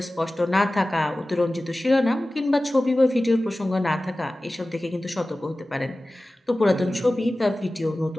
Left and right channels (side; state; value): both; normal; correlation 0.97